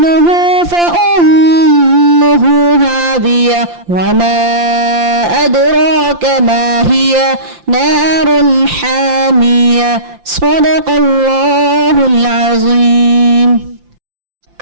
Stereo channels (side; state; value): left; late; 5.8 ms